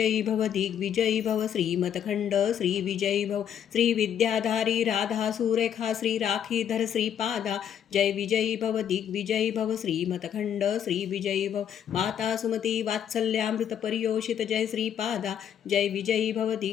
भव दिग्विजयी भव श्रीमतखंड श्री विजयी भव श्री विद्याधारी राधा सुरेखा श्री राखीधर श्रीपादा जय विजयी भव दिग्विजयी भव श्रीमतखंड श्री विजयी भव माता सुमती वात्सल्यामृत परियोषित जय श्रीपादा जय विजयी भव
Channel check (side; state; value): right; quieter; 9.1 dB